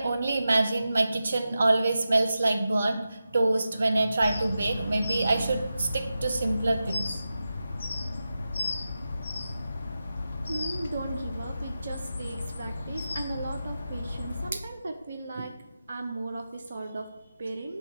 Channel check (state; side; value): inverted; both; correlation -0.92